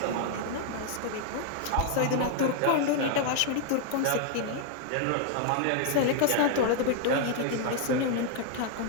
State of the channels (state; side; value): different; both; correlation 0.00